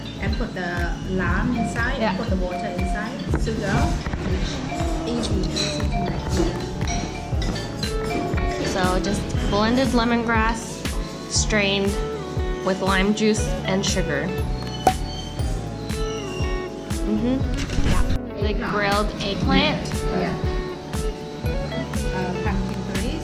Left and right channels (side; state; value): both; identical; correlation 1.00